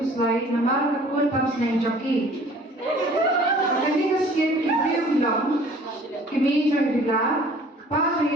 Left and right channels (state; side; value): normal; both; correlation 0.51